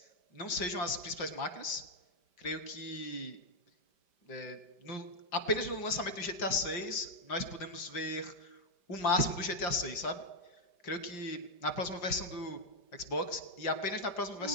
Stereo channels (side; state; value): right; late; 5.1 ms